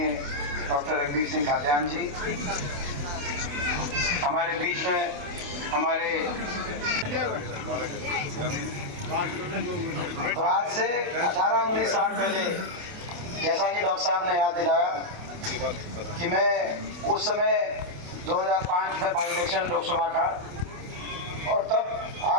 डॉक्टर रघुवीर सिंह खाद्यान जी हमारे बीच में, हमारे तो आज से 18-19 साल पहले, जैसा कि डॉक्टर साहब ने याद दिलाया कि मैं उस समय 2005 में बाई इलेक्शन लोकसभा का, और तब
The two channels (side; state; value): left; late; 27 ms